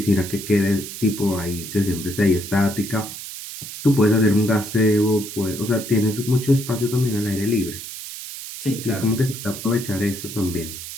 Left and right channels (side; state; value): right; noise; hiss, 10 dB below the sound